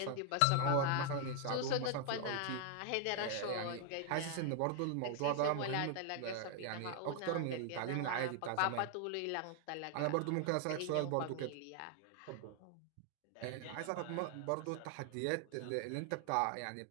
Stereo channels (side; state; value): both; different; correlation 0.00